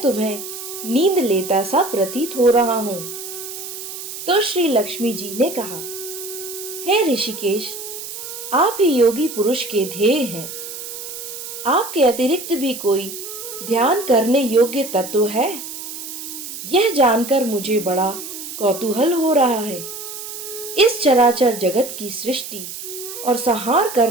तुम्हें नींद लेता सा प्रतीत हो रहा हूं। तो श्री लक्ष्मी जी ने कहा, हे ऋषिकेश, आप ही योगी पुरुष के ध्येय हैं। आपके अतिरिक्त भी कोई ध्यान करने योग्य तत्व है? यह जानकर मुझे बड़ा कौतूहल हो रहा है। इस चराचर जगत की सृष्टि और संहार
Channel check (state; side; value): noise; right; hiss, 9 dB below the sound